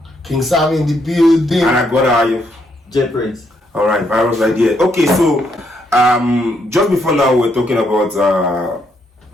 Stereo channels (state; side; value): normal; both; correlation 0.75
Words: King Sam in the building, and I got J Prince. All right, virus idea. Okay, so just before now, we're talking about